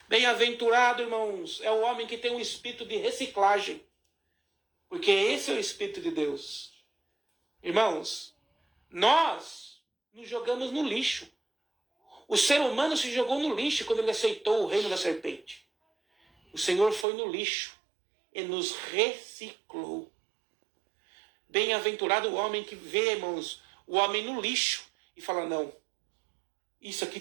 Bem-aventurado, irmãos, é o homem que tem um espírito de reciclagem. Porque esse é o Espírito de Deus. Irmãos, nós nos jogamos no lixo. O ser humano se jogou no lixo quando ele aceitou o reino da serpente. O Senhor foi no lixo e nos reciclou. Bem-aventurado o homem que vê, irmãos, o homem no lixo e fala, não, isso aqui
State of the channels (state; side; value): drops out; left; at 17.1 s